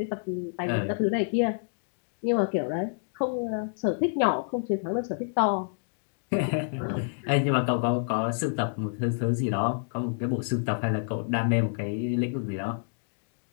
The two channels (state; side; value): silent; right; digital silence